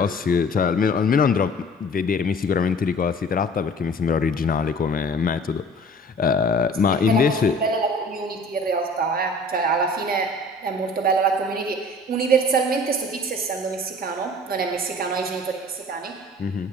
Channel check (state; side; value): normal; both; correlation 0.47